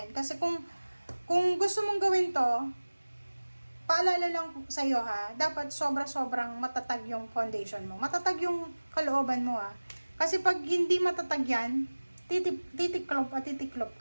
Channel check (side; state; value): both; inverted; correlation -1.00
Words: Kasi kung gusto mong gawin to, paalala lang sa'yo ha, dapat sobra-sobrang matatag yung foundation mo. Matatag yung kalooban mo ha. Kasi pag hindi matatag yan, titiklop